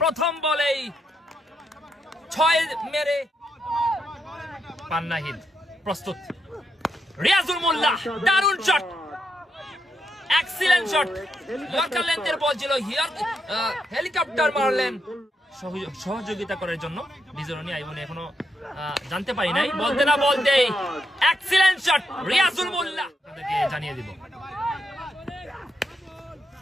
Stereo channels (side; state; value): both; normal; correlation 0.81